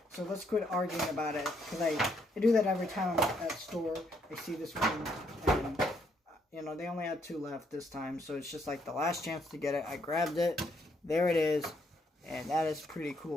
so let's quit arguing about it, because I do that every time I'm at the store. I see this one, and, you know, they only had 2 left this time, so it's just like the last chance to get it. I grabbed it, there it is, and that is pretty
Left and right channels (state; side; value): normal; both; correlation 0.72